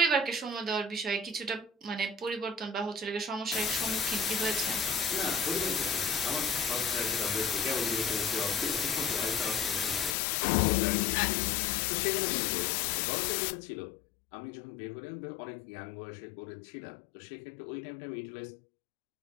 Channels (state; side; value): drops out; right; at 10.2 s